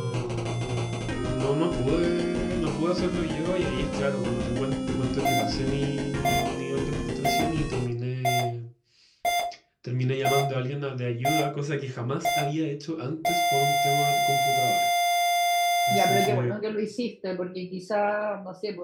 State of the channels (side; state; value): both; identical; correlation 1.00